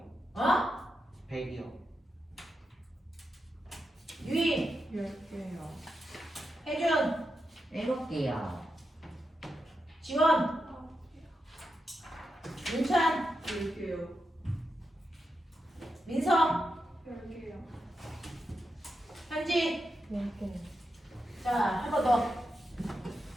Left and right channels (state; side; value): normal; both; correlation 0.87